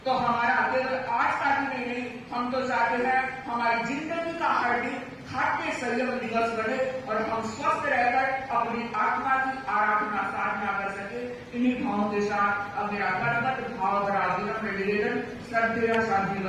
तो हमारा केवल आज का दिन नहीं, हम तो चाहते हैं हमारी जिंदगी का हर दिन खाद्य संयम दिवस बने और हम स्वस्थ रहकर अपनी आत्मा की आराधना साधना कर सके। इन्हीं भावों के साथ अब मेरा कर्मठ भाव निवेदन श्रद्धेय शांति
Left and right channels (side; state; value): both; identical; correlation 1.00